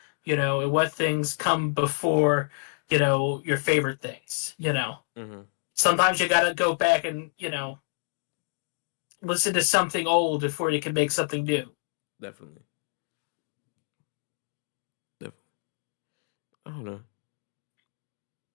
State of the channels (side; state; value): right; silent; digital silence